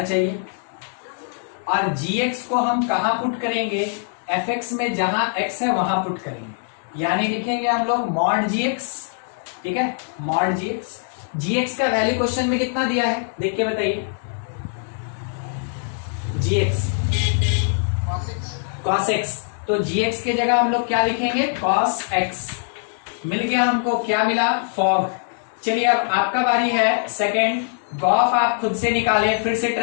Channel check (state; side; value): silent; right; digital silence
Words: चाहिए, और जी एक्स को हम कहां पुट करेंगे? एफ एक्स में, जहां एक्स है वहां पुट करेंगे, यानी लिखेंगे हम लोग मॉड जी एक्स, ठीक है, मॉड जी एक्स। जी एक्स का वैल्यू क्वेश्चन में कितना दिया है देख के बताइए? जी एक्स कॉस एक्स, तो जी एक्स के जगह हम लोग क्या लिखेंगे? Cos x. मिल गया हमको, क्या मिला? फॉग। चलिए अब आपका बारी है सेकंड। गॉफ आप खुद से निकालें, फिर से